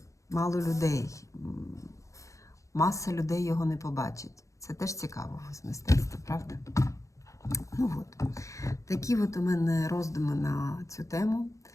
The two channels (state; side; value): late; right; 0.15 ms